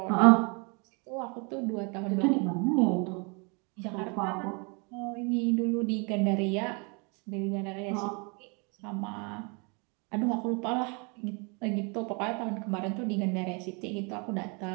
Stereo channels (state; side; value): quieter; left; 32.7 dB